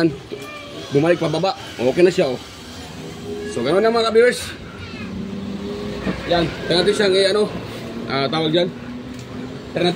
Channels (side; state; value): both; identical; correlation 1.00